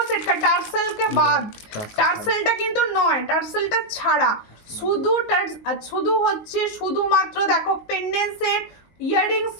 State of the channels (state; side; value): late; right; 19 ms